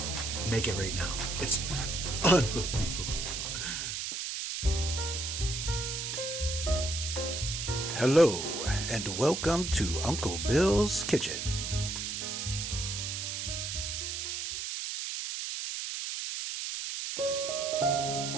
make it right now. It's unbelievable. Hello, and welcome to Uncle Bill's Kitchen.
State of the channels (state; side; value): noise; right; hiss, 3 dB below the sound